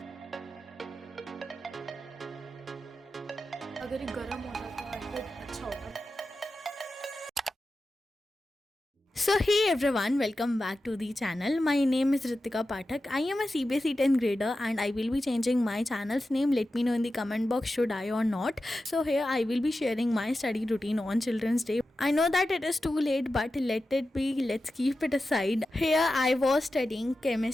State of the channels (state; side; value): normal; both; correlation 0.92